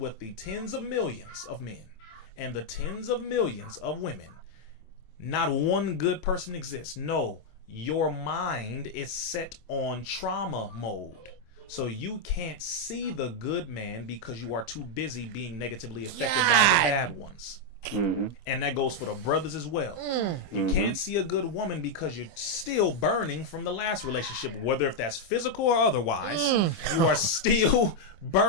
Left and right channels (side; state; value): right; late; 25 ms